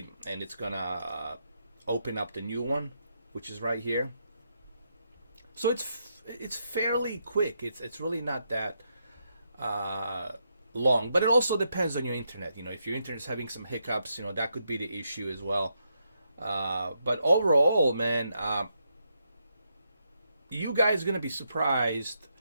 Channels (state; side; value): inverted; both; correlation -0.80